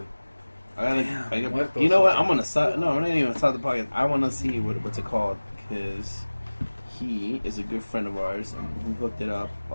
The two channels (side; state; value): both; inverted; correlation -1.00